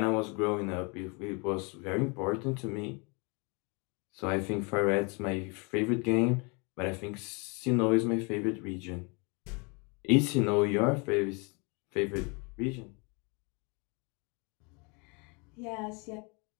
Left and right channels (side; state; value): right; quieter; 31.6 dB